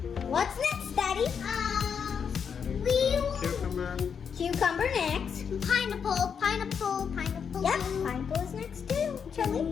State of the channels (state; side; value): quieter; right; 6.9 dB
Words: What's next, Daddy? Cucumber. Cucumber next. Pineapple. Yep, pineapple is next too. Charlie.